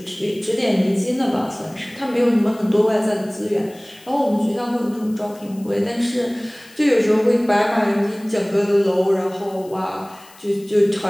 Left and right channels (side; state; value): left; noise; hiss, 24 dB below the sound